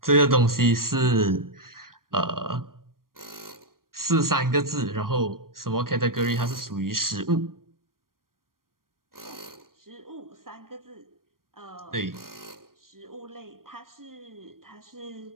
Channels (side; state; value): left; late; 0.91 ms